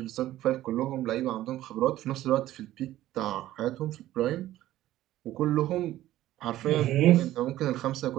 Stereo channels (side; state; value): left; quieter; 14.4 dB